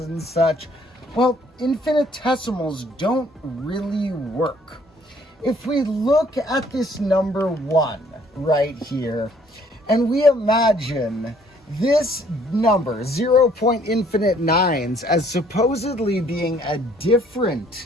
and such, well, infinitesimals don't really work. If we look at this number 1 right here, and we imagine this number, 0.9, as supposedly being a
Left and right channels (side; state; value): both; normal; correlation 0.61